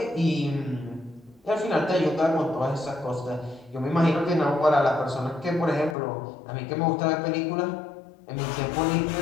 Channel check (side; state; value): right; drops out; at 6.0 s